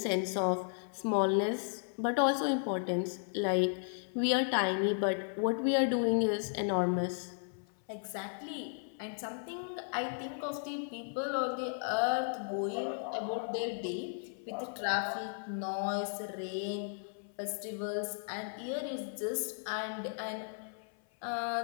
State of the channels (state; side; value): silent; right; 54 dB below the other